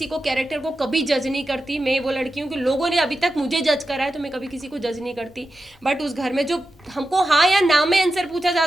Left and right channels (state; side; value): normal; both; correlation 0.91